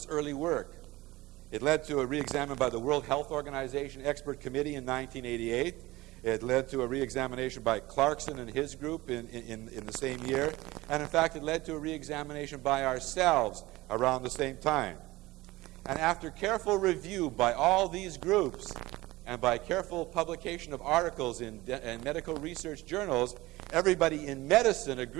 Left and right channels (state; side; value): quieter; left; 19.5 dB